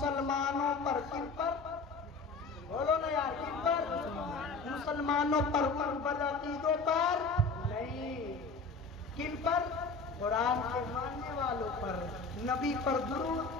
پر۔ کن پر؟ بولو نا یار، کن پر؟ مسلمانوں پر، ان بدعقیدوں پر نہیں۔ کن پر؟ قرآن کے ماننے والوں پر، نبی پر درود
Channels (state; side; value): quieter; right; 4.1 dB